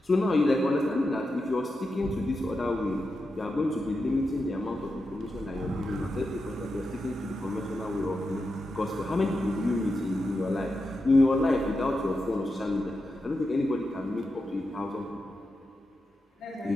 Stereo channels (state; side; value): normal; both; correlation 0.88